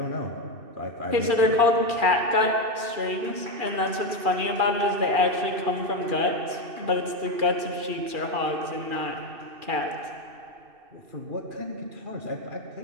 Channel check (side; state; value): left; late; 2.4 ms